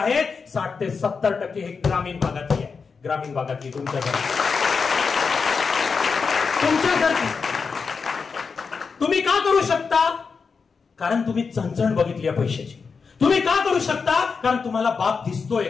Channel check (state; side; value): quieter; right; 5.2 dB